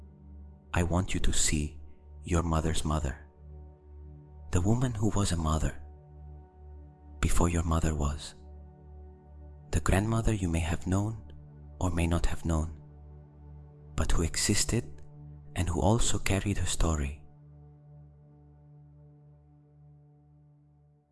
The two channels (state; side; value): identical; both; correlation 1.00